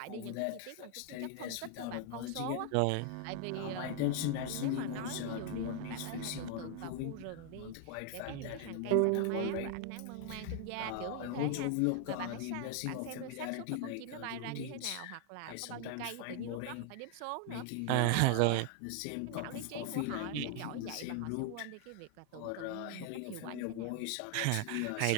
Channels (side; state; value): both; different; correlation 0.00